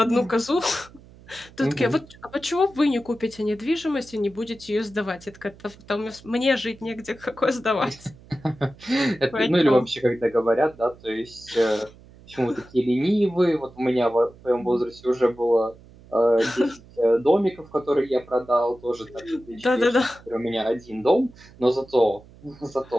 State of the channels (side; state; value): right; noise; hum, 23 dB below the sound